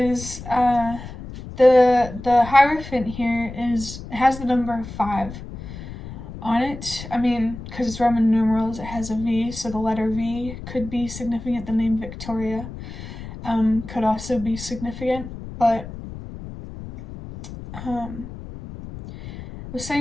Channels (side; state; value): left; noise; rumble, 12 dB below the sound